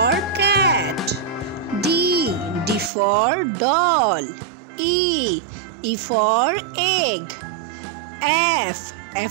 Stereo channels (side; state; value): left; drops out; at 2.9 s